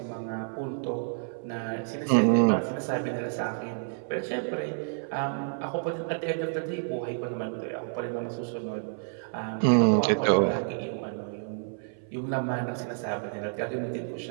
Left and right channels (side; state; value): left; silent; 56 dB below the other